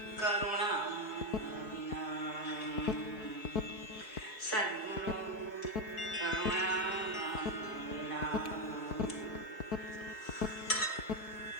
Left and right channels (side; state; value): right; late; 4.6 ms